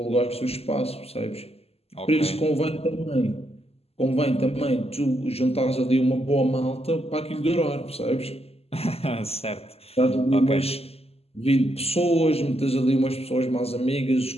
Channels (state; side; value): late; right; 0.29 ms